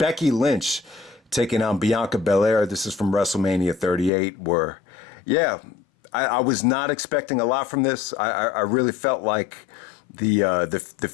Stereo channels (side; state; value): right; drops out; at 4.1 s